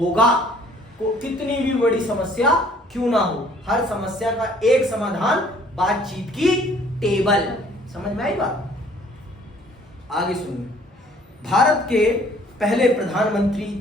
कितनी भी बड़ी समस्या क्यों ना हो, हर समस्या का एक समाधान बातचीत की टेबल। समझ में आई बात? आगे सुनिए। भारत के पहले प्रधानमंत्री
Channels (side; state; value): both; normal; correlation 0.57